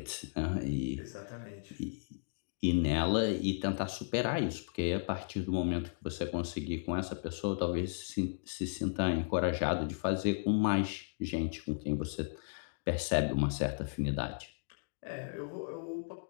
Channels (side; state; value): right; silent; digital silence